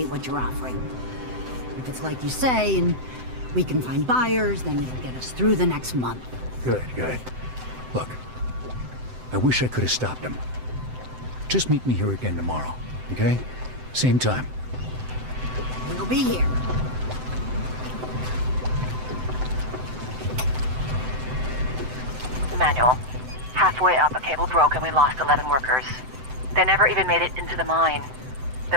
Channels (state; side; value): late; left; 7.8 ms